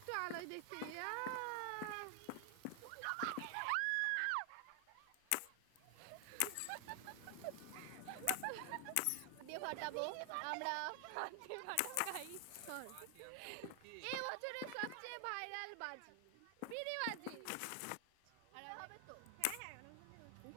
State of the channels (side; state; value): both; different; correlation 0.00